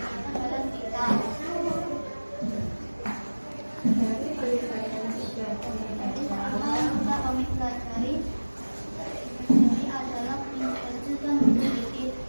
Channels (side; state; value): both; inverted; correlation -1.00